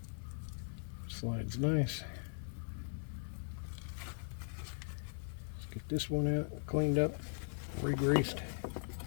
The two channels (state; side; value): silent; right; digital silence